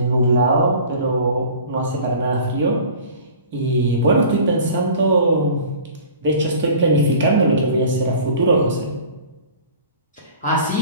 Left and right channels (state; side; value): inverted; both; correlation -0.44